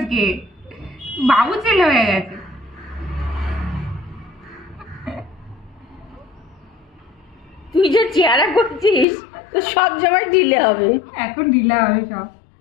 বাবু ছেলে হয়ে গেছে। তুই যে চেহারা করছিস তো সব সময় ঢিলে হবে। এখন ঢিলা হবে সব।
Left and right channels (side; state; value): right; drops out; at 9.1 s